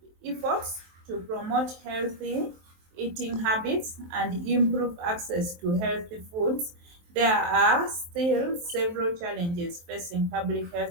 efforts to promote healthy eating habits and improve access to healthy foods, there are still several challenges facing public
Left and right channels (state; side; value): late; left; 23 ms